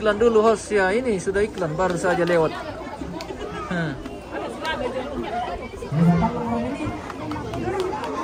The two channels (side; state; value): both; identical; correlation 1.00